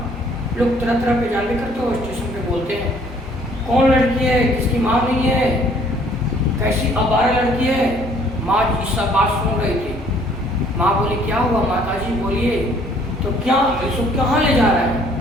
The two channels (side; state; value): both; normal; correlation 0.60